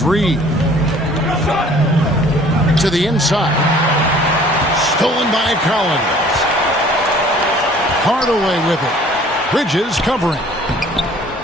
Reed. To the inside. Stolen by Collins. Hardaway with it. Bridges covering.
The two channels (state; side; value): normal; both; correlation 0.53